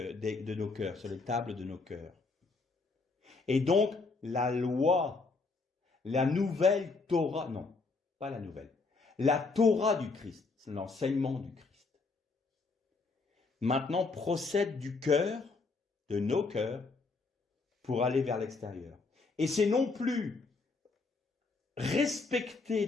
nos cœurs, sur les tables de nos cœurs. Et donc, la loi, la nouvelle Torah, non, pas la nouvelle, la Torah du Christ, c'est l'enseignement du Christ, maintenant procède du cœur, de nos cœurs, pour aller vers l'extérieur. Et c'est non plus respecter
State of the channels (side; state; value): right; quieter; 4.0 dB